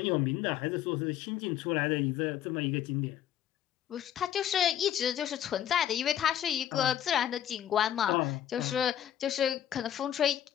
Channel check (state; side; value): quieter; right; 10.7 dB